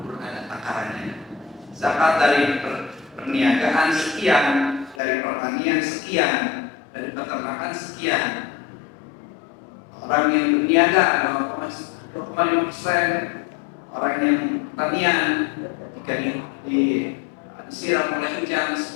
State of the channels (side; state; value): right; drops out; at 5.0 s